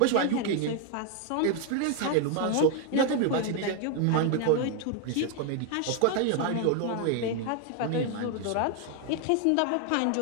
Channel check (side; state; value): both; different; correlation 0.01